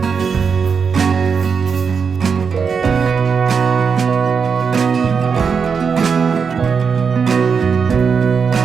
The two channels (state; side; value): quieter; left; 5.9 dB